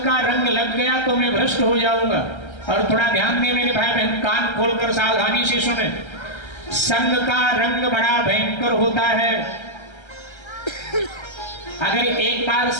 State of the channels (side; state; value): right; late; 1.3 ms